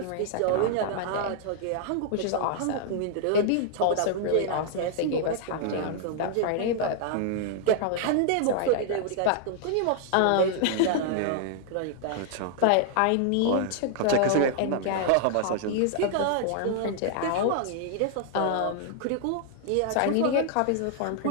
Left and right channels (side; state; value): both; different; correlation -0.01